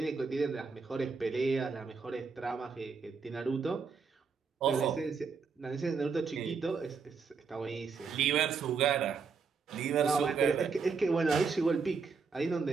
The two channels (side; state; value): left; quieter; 5.3 dB